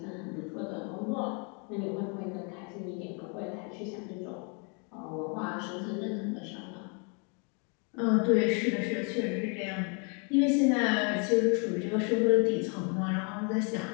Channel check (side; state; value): right; quieter; 36.0 dB